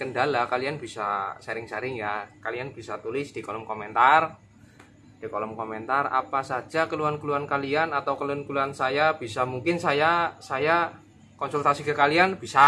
kalian bisa sharing-sharing ya. Kalian bisa tulis di kolom komentar. Di kolom komentar apa saja keluhan-keluhan kalian atau keluhan-keluhan saya, bisa mungkin saya konsultasi ke kalian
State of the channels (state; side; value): identical; both; correlation 1.00